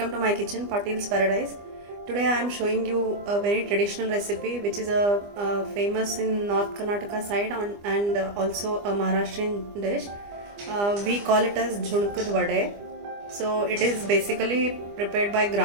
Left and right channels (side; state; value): left; late; 25 ms